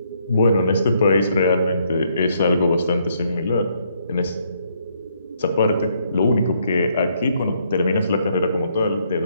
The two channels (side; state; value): both; inverted; correlation -0.71